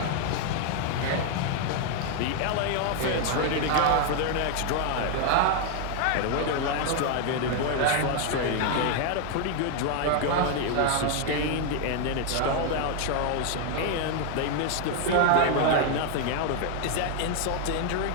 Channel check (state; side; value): different; both; correlation 0.00